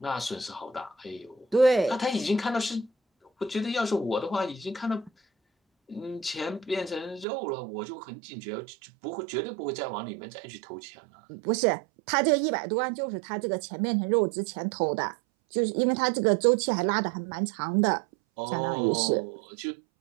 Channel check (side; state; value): left; drops out; at 7.2 s